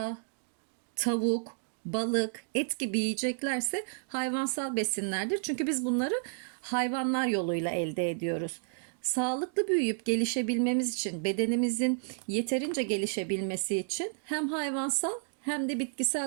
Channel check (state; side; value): silent; left; digital silence